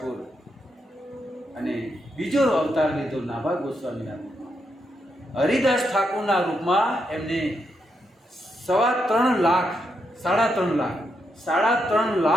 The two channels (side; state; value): both; normal; correlation 0.82